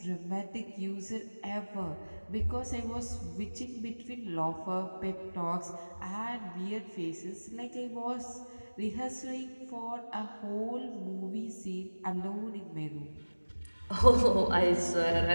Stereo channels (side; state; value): both; inverted; correlation -1.00